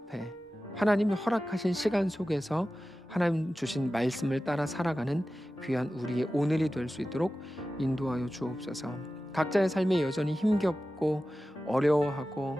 하나님이 허락하신 시간 속에서 하나님 주신 말씀을 따라 살아가는 귀한 우리의 오늘이 될 수 있도록 인도하여 주옵소서. 각자의 삶에 여전히 힘겹고 어려워하고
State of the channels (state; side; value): normal; both; correlation 0.94